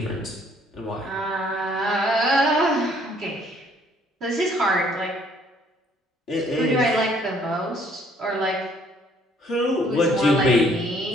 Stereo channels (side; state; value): both; normal; correlation 0.62